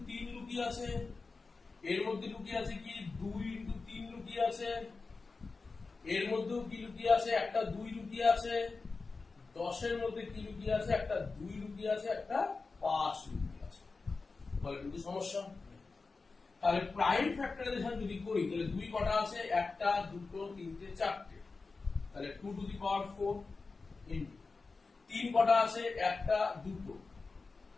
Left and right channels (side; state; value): right; quieter; 4.1 dB